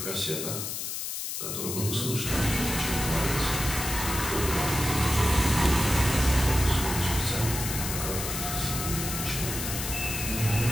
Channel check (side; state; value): left; noise; hiss, 4 dB below the sound